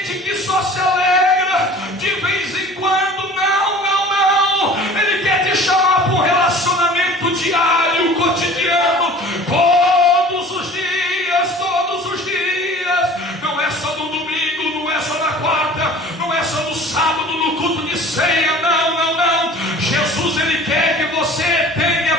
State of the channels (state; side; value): normal; both; correlation 0.44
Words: que só se alegra de vez em quando. Não, Ele quer te chamar para um relacionamento diário, cotidiano, todos os dias,